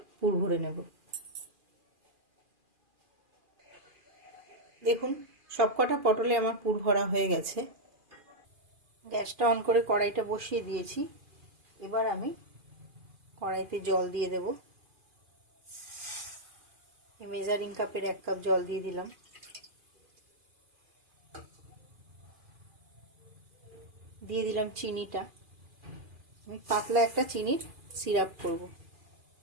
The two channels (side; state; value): left; late; 2.4 ms